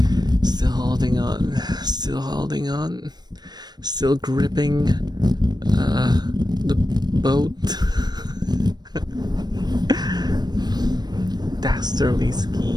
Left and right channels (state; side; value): late; left; 0.20 ms